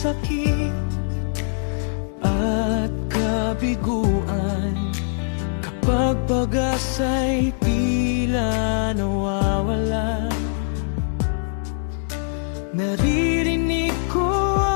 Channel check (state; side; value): silent; right; digital silence